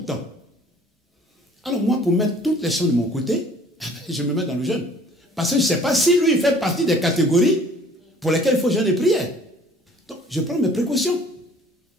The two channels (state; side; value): normal; both; correlation 0.53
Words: temps. Alors moi, pour mettre toutes les choses de mon côté, je me mets dans le jeûne. Parce que je ne sais pas si lui, il fait partie des catégories pour lesquelles il faut jeûner et prière. Donc, je prends mes précautions